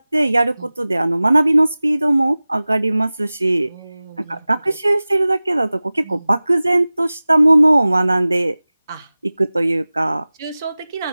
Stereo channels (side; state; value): both; inverted; correlation -0.98